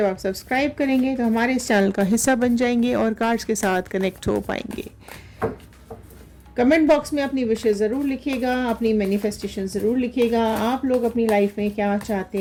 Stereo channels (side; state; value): both; identical; correlation 1.00